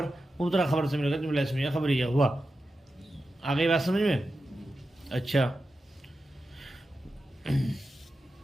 مبتدا خبر سے مل کر جملہ اسمیہ خبریہ ہوا. آگے بات سمجھ میں؟ اچھا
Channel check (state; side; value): normal; both; correlation 0.91